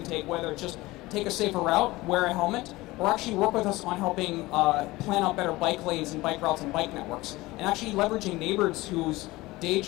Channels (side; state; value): right; quieter; 19.9 dB